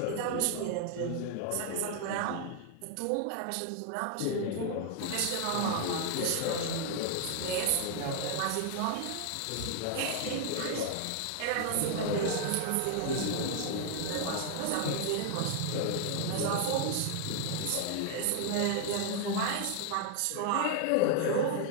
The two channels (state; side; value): different; both; correlation 0.00